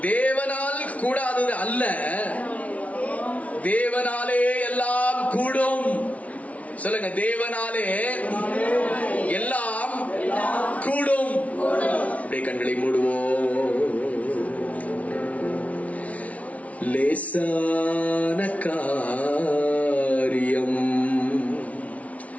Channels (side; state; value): right; late; 0.067 ms